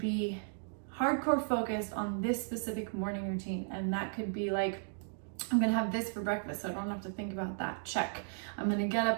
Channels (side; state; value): left; silent; digital silence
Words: hardcore focused on this specific morning routine. And that could be like, I'm gonna have this for breakfast, so I don't have to think about that. Check. I'm gonna get